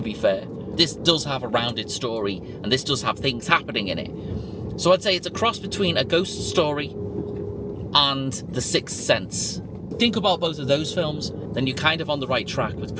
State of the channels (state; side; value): identical; both; correlation 1.00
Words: be fair. This does have a rounded story, and this does have things happening in it. So I'd say it's a cross between A Ghost Story and The Sixth Sense. Think about both of those films, then you're kind of on the right track with